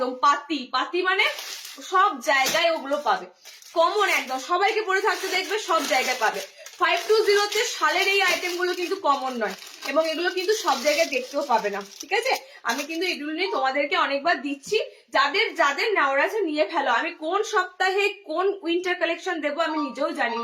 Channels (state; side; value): identical; both; correlation 1.00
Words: পাতি পাতি, মানে সব জায়গায় ওগুলো পাবে, কমন একদম, সবাইকে পরে থাকতে দেখবে, সব জায়গায় পাবে। 520-তে শালের এই আইটেম গুলো কিন্তু কমন নয়, এবং এগুলো কিন্তু সব জায়গায় দেখতেও পাবে না, ঠিক আছে। আমি কিন্তু এগুলো নিয়ে তোমাদেরকে অনেকবার দিচ্ছি, যাদের যাদের নেওয়ার আছে নিয়ে ফেলো। আমি কোন সপ্তাহে কোন উইন্টার কালেকশন দেবো আমি নিজেও জানি